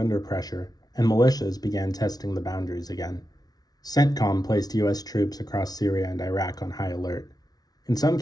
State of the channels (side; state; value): right; late; 0.19 ms